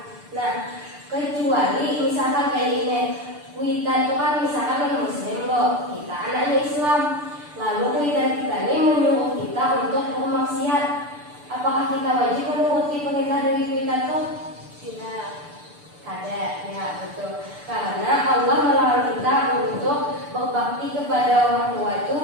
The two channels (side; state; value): left; late; 6.8 ms